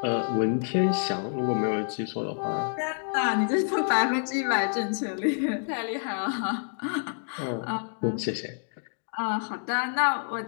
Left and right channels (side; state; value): right; silent; digital silence